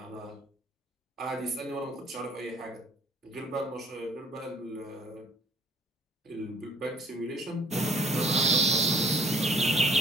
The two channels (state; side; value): normal; both; correlation 0.57